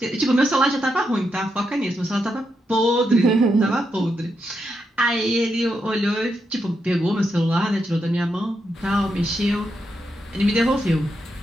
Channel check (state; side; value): normal; both; correlation 0.83